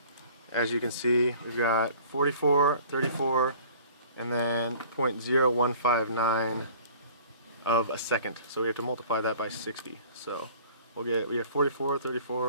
as you can see, we've got 44, 34, and then 0.0159 of a second. So we have to multiply that by 60. So we have 44,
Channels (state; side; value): inverted; both; correlation -0.49